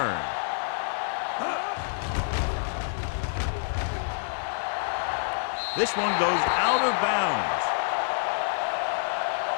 This one goes out of bounds.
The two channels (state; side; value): silent; right; 55 dB below the other